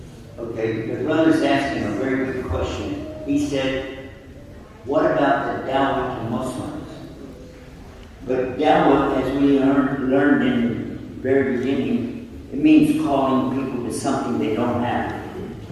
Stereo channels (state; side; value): identical; both; correlation 1.00